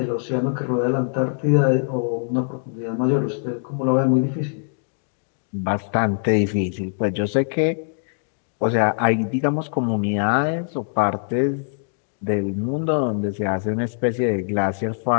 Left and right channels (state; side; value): silent; right; digital silence